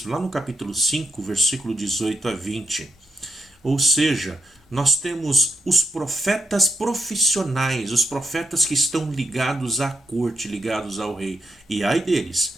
lá no capítulo 5, versículo 18 a 20. Ou seja, nós temos os profetas profissionais, os profetas que estão ligados à corte, ligados ao rei. E ai deles,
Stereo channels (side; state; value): both; normal; correlation 0.79